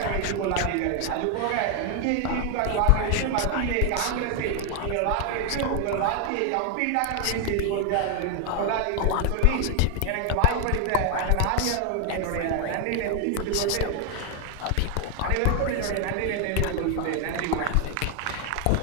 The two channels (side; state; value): both; different; correlation 0.00